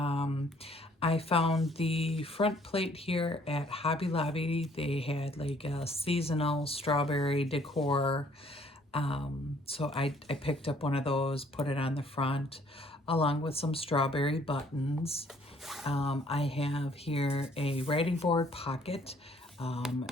I found the front plate here at Hobby Lobby. They had like a seasonal strawberry decor. So I picked up one of those, put it on the front, along with some strawberry buttons. I have here a writing board pocket.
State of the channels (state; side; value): normal; both; correlation 0.61